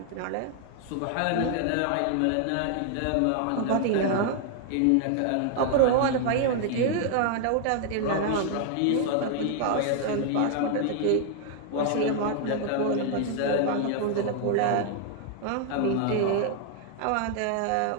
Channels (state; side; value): different; both; correlation 0.00